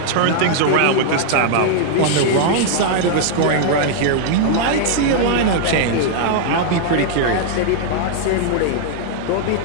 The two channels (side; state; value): both; different; correlation -0.01